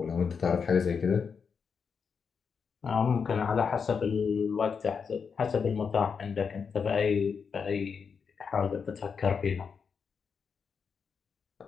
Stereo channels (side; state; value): right; quieter; 6.0 dB